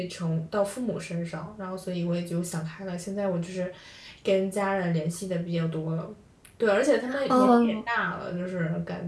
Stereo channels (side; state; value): both; identical; correlation 1.00